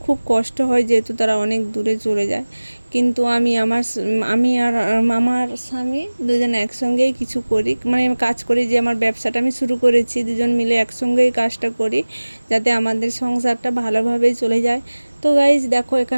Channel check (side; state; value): both; inverted; correlation -1.00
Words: খুব কষ্ট হয়, যেহেতু তারা অনেক দূরে চলে যায়। কিন্তু আমি আর আমার স্বামী দুজন একসঙ্গেই কিছু করি, মানে কাজ করি, যে আমার ব্যবসাটা আমি শুরু করেছি, দুজন মিলে একসঙ্গেই কাজটা করি যাতে আমাদের সংসারটা ভালোভাবেই চলে যায়। তো গাইজ দেখো